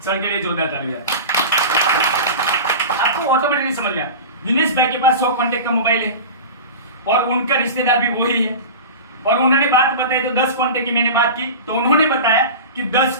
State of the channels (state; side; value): inverted; both; correlation -0.30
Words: सर के लिए जोरदार तालियां। आपको ऑटोमेटिकली समझ गया, दिनेश भाई के पास 100 कॉन्टेक्ट का मोबाइल है, और उनका रिश्तेदार भी वही है, और उन्होंने बात बताई, तो 10 कॉन्टेक्ट की मैंने बात की, तो उन्होंने बताया कि 10